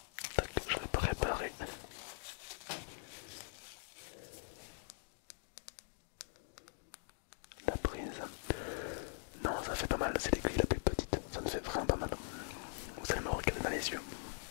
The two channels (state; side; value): silent; right; digital silence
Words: Tac, je vais préparer la prise. Non, ça fait pas mal, c'est l'aiguille la plus petite, ça me fait vraiment pas mal. Vous allez me regarder dans les yeux.